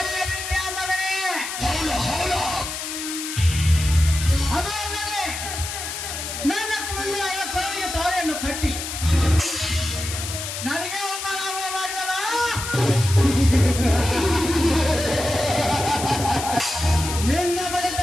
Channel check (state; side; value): noise; left; hiss, 6 dB below the sound